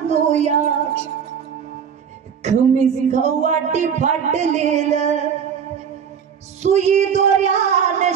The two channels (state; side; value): quieter; left; 7.5 dB